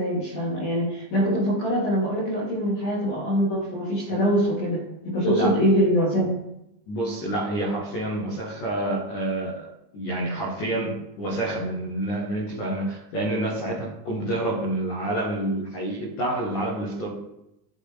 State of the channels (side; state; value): right; late; 20 ms